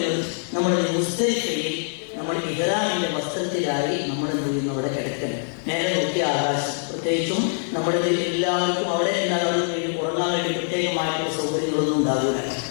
നമ്മുടെ മുസ്ദലിഫയിൽ നമ്മൾ ഇഹ്റാമിന്റെ വസ്ത്രത്തിലായി നമ്മൾ എന്ത് ചെയ്യുന്നു? അവിടെ കിടക്കണം. നേരെ നോക്കിയ ആകാശം. പ്രത്യേകിച്ചും നമ്മുടെ എല്ലാവർക്കും അവിടെ എന്താണ് ഉറങ്ങാൻ വേണ്ടി പ്രത്യേകമായിട്ടുള്ള സൗകര്യങ്ങളൊന്നും ഉണ്ടാകില്ല.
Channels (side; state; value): right; silent; 63 dB below the other